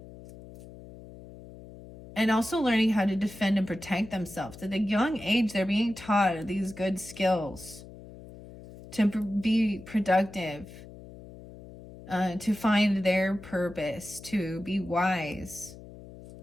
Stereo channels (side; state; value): left; noise; hum, 17 dB below the sound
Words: and also learning how to defend and protect themselves. At a young age, they're being taught these good skills to be productive. To find their purpose, to be wise.